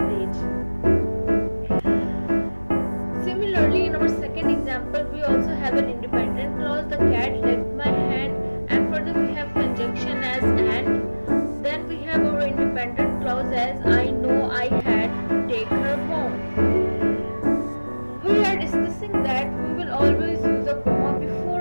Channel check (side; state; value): both; inverted; correlation -1.00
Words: beach. Similarly, in our second example, we also have an independent clause, the cat licked my hand, and further we have conjunction as and. Then we have our independent clause as I know I had to take her home. We are discussing that we will always use a comma